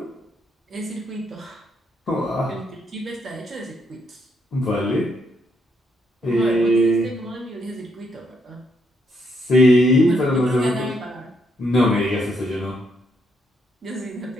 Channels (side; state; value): both; normal; correlation 0.75